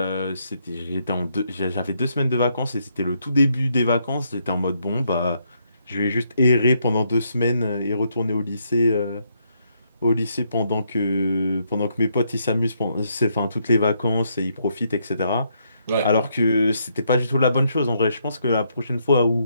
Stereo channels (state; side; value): inverted; both; correlation -0.75